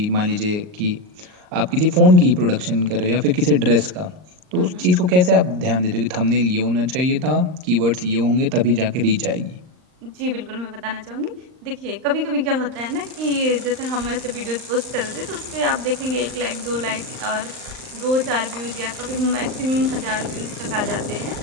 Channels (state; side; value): late; left; 39 ms